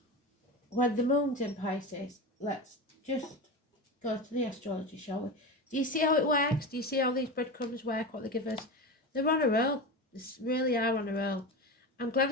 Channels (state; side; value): normal; both; correlation 0.24